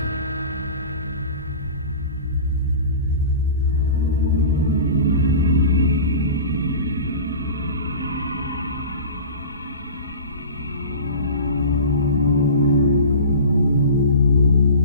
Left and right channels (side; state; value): both; inverted; correlation -0.36